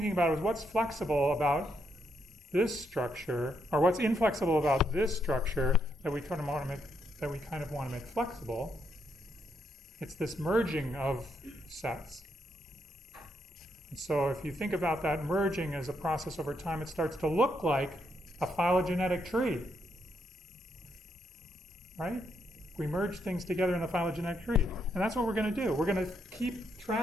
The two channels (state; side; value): normal; both; correlation 0.78